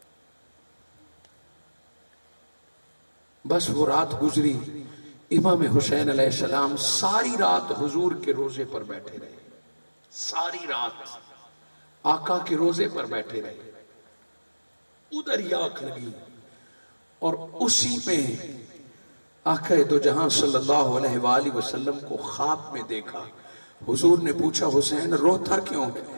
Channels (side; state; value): both; inverted; correlation -1.00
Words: بس وہ رات گزری، امام حسین علیہ السلام ساری رات حضور کے روزے پر بیٹھے رہے، ساری رات آقا کے روزے پر بیٹھے رہے۔ ادھر ہی آنکھ لگی اور اسی میں آقا دو جہاں صلی اللہ علیہ وآلہ وسلم کو خواب میں دیکھا۔ حضور نے پوچھا حسین روتا کیوں